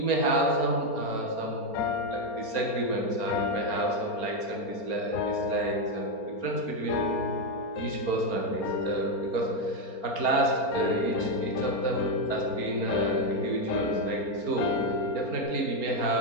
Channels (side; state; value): right; late; 4.3 ms